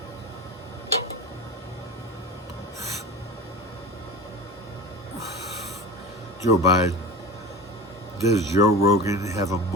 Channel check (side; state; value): both; normal; correlation 0.32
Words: Joe Biden. Does Joe Rogan have a